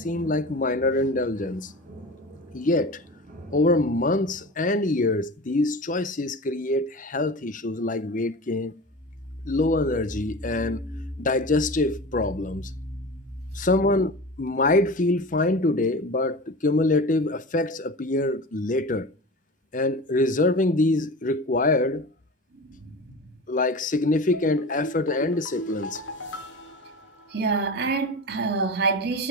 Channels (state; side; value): normal; both; correlation 0.32